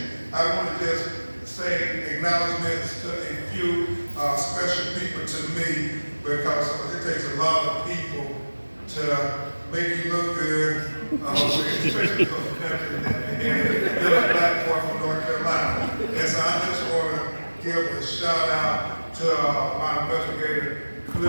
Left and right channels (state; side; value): inverted; both; correlation -1.00